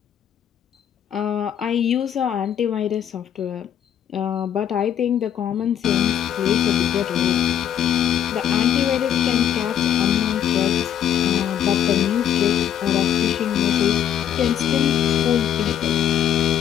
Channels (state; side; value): quieter; right; 9.8 dB